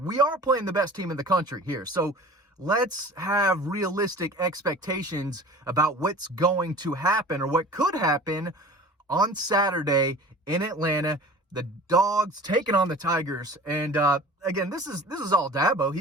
we are playing the best team in the country here. So let's have realistic expectations about what's going to happen or what could happen on Saturday in Atlanta. The Dogs taking on the Tigers. And again, this is all Dabo.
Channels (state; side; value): normal; both; correlation 0.42